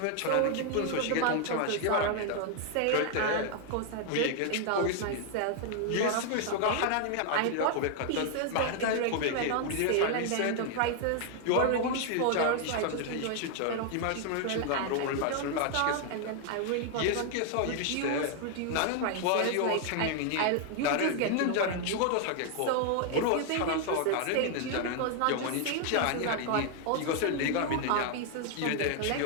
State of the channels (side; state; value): both; different; correlation 0.00